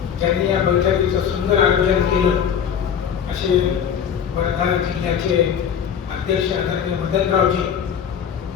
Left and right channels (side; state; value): right; quieter; 8.1 dB